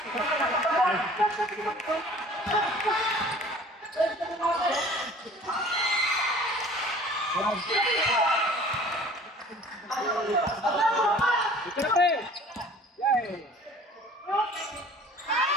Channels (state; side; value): normal; both; correlation 0.48